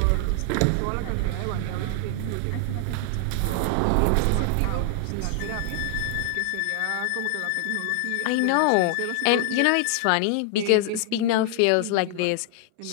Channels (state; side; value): different; both; correlation 0.00